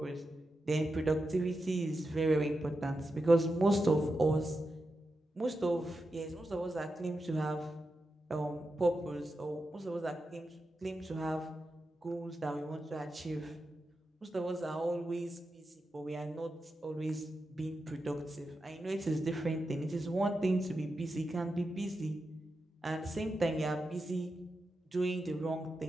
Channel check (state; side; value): normal; both; correlation 0.89